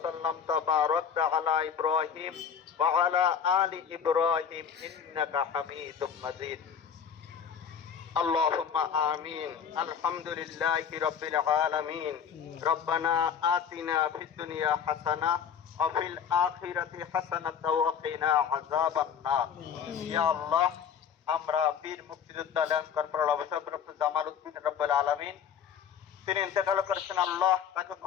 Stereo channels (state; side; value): quieter; right; 7.6 dB